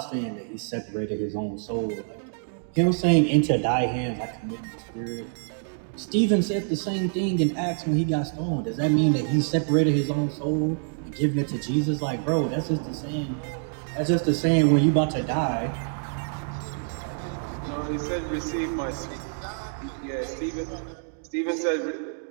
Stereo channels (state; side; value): silent; left; digital silence